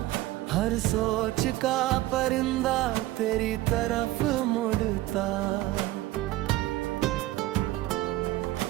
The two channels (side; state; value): left; quieter; 16.7 dB